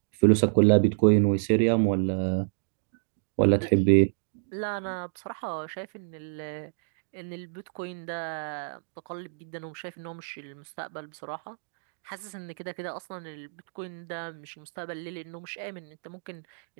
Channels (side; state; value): left; silent; digital silence